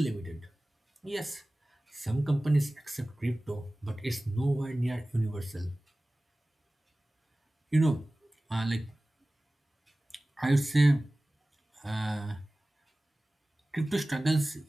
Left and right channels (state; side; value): normal; both; correlation 0.97